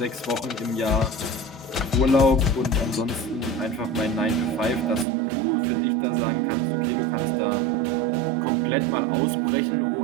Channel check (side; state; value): left; drops out; at 5.1 s